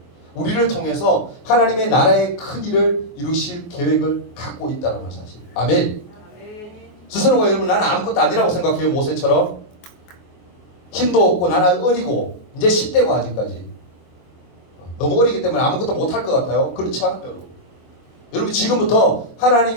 우리를 통해서 하나님의 나라의 큰 일을 이루실 계획을 갖고 있다는 사실. 아멘. 스스로가 여러분 나는 아무것도 아니라고 생각해요. 모세처럼 힘도 없고 나는 어리고 이제 10대고 아직까지 너무 어리기 때문에 아무것도 못할 것 같아요. 그렇지 않아요 여러분. 여러분 지금부터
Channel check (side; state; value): right; late; 24 ms